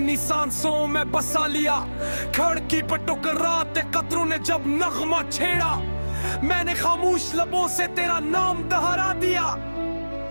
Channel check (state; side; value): inverted; both; correlation -1.00